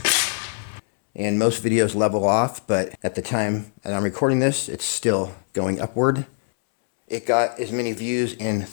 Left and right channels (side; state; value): right; silent; 64 dB below the other